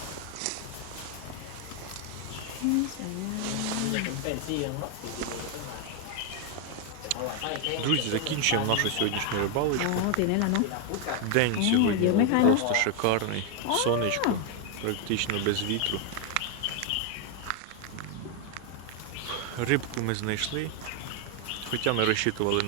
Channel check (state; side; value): different; both; correlation 0.01